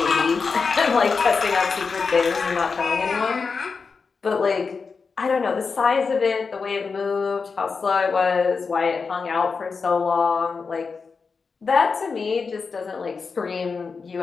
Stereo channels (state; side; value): quieter; right; 5.0 dB